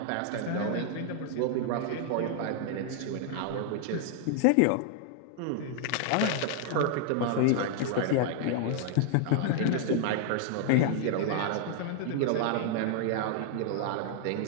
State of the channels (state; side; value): different; both; correlation 0.00